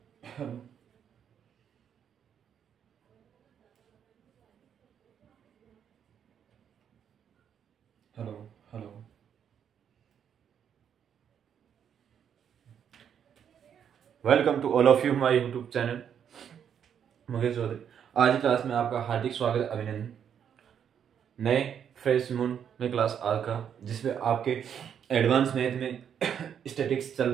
hello hello hello. Welcome to all of you my YouTube channel Mukesh Chaudhary. आज की class में आपका हार्दिक स्वागत, अभिनंदन। नए फ्रेश मून में क्लास आज का, जिसमें आपके एडवांस मैथ में स्टैटिक्स चल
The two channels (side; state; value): left; quieter; 8.4 dB